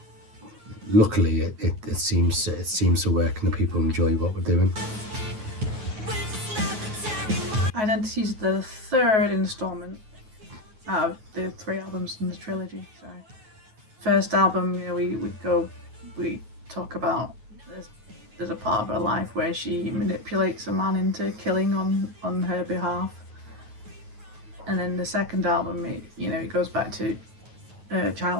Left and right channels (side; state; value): left; late; 9.4 ms